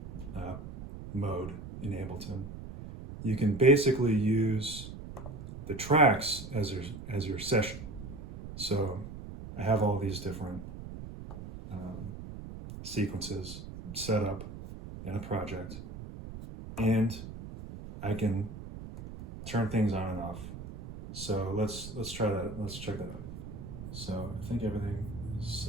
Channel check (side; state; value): right; noise; rumble, 11 dB below the sound